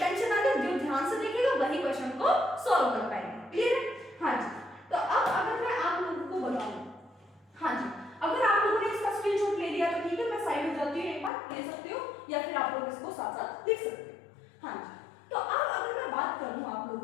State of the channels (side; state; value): right; drops out; at 11.3 s